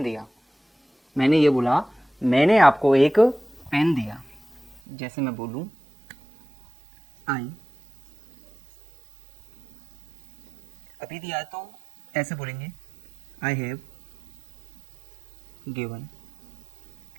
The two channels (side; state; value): left; drops out; at 4.8 s